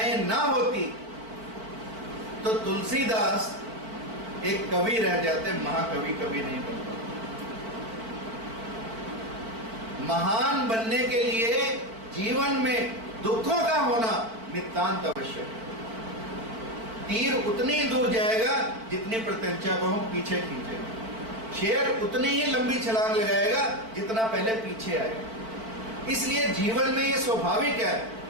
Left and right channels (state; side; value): late; left; 4.5 ms